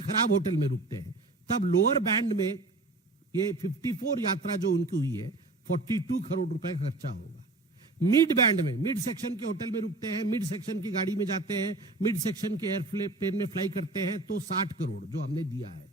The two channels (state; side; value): quieter; left; 3.1 dB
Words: खराब होटल में रुकते हैं, तब लोअर बैंड में ये 54 यात्रा जो उनकी हुई है 42 करोड़ रुपए का खर्चा होगा। मिड बैंड में, मिड सेक्शन के होटल में रुकते हैं, मिड सेक्शन की गाड़ी में जाते हैं, मिड सेक्शन के एयरप्लेन में फ्लाई करते हैं, तो 60 करोड़ जो हमने दिया है,